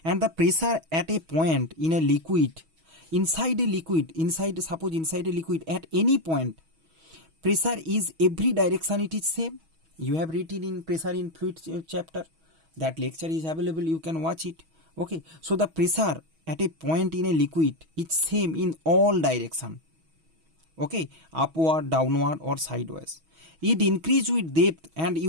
And the pressure at a point in a liquid, inside a liquid, suppose inside a liquid, at any point, pressure is every direction it is same. You have written in pressure in fluid chapter. That lecture is available, you can watch it. Okay, so the pressure at a point in a liquid is same in all direction. Okay, upward, downward or sideways. It increase with depth, and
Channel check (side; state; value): left; late; 6.2 ms